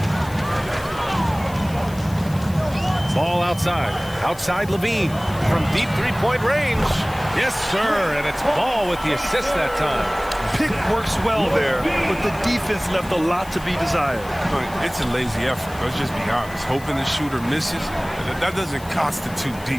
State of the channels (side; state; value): left; noise; hiss, 19 dB below the sound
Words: Ball outside. Outside Levine. From deep three-point range. Yes, sir. And it's Ball with the assist that time. Pick works well there, but the defense left a lot to be desired. It's a lazy effort. Let's just be honest. Hoping the shooter misses, that doesn't constitute